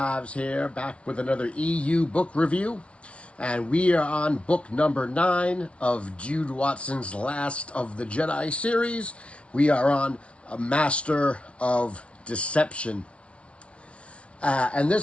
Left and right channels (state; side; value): late; right; 0.061 ms